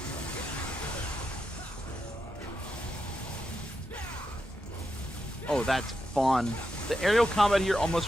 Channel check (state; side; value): normal; both; correlation 0.86